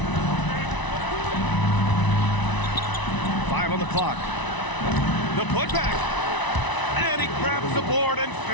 5 on the clock. The putback. And he grabs the board and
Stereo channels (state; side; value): late; right; 1.0 ms